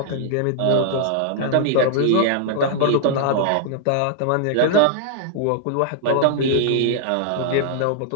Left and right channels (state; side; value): different; both; correlation -0.01